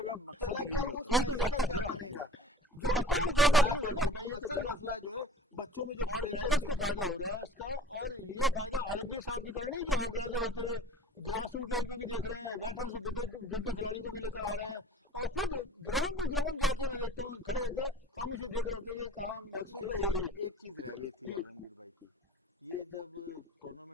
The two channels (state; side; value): normal; both; correlation 0.45